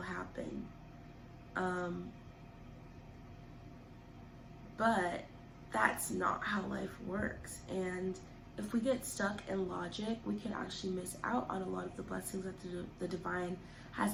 happen. But that's not how life works. And if we get stuck in logic, we can actually miss out on a lot of the blessings that the divine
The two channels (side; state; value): both; identical; correlation 1.00